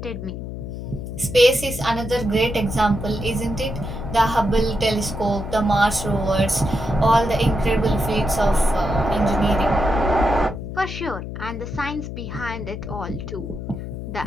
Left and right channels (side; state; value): left; noise; hum, 8 dB below the sound